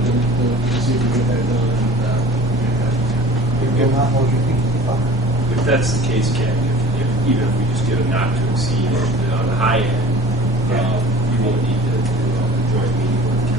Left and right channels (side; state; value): both; normal; correlation 0.44